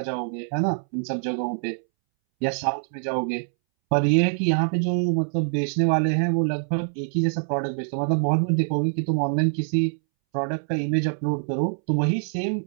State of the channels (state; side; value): silent; left; 62 dB below the other